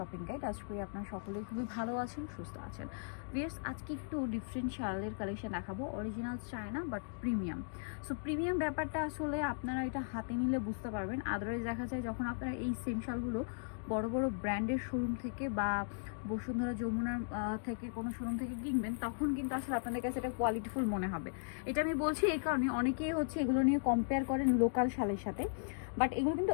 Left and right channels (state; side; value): silent; right; digital silence